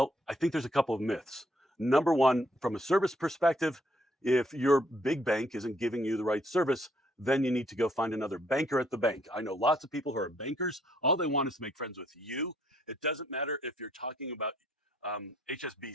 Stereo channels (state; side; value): normal; both; correlation 0.69